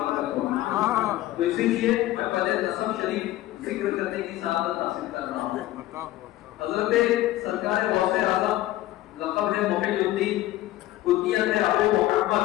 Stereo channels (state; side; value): quieter; right; 15.5 dB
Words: ہوگی۔ تو اسی لیے میں پہلے نسب شریف ذکر کرنے کی سعادت حاصل کر رہا ہوں۔ حضرت سرکار غوث اعظم لقب ہے محی الدین، کنیت ہے ابو